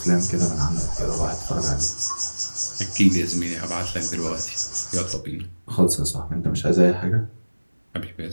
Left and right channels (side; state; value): both; inverted; correlation -1.00